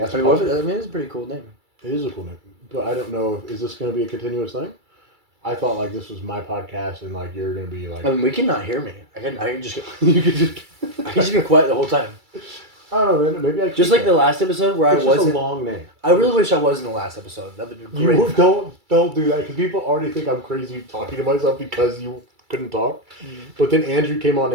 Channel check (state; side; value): late; left; 2.3 ms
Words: I S-Pod. mean, it's a pretty cool name. It is a cool name, but I don't know. Is this going to be a continuous thing? I thought like this was my podcast, and like you're going to be like. I mean, we cannot hear me. I can just you could just. I can just be quiet the whole time. I don't know, man. Maybe I. Just like the last episode where It's I just wasn't. a long name. I really wish I was in the last episode. That would be great. You don't do that because people already think I'm crazy talking to myself because you couldn't talk. But then Andrew came on